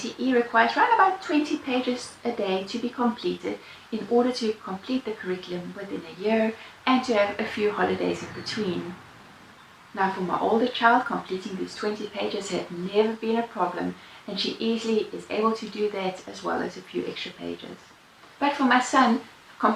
requires around about 20 pages a day to be completed in order to complete the curriculum within a year and to have a few holidays in between. Now, for my older child, completing these 20 pages had never been a problem, and she easily is able to do that as well as a few extra pages. But for my son,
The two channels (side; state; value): both; identical; correlation 1.00